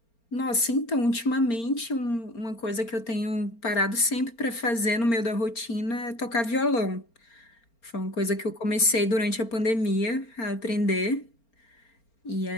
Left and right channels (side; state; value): right; late; 4.4 ms